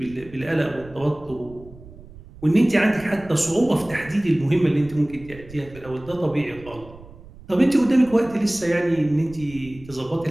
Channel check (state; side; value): noise; right; rumble, 19 dB below the sound